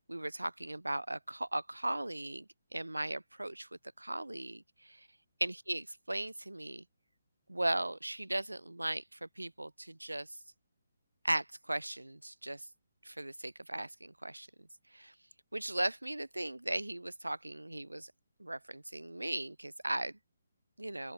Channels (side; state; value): both; inverted; correlation -1.00